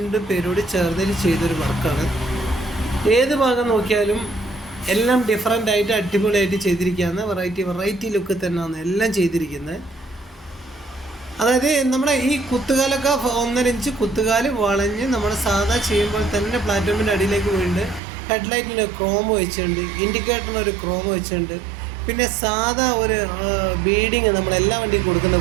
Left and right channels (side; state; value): left; drops out; at 18.0 s